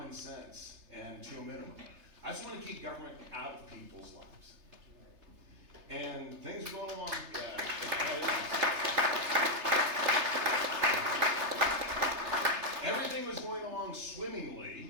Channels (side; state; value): left; late; 3.3 ms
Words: sense and to a minimum. I just want to keep government out of people's lives. And things are going along. Everything was going along